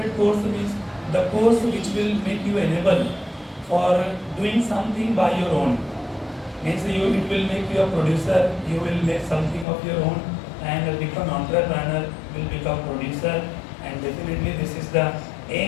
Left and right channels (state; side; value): drops out; right; at 9.7 s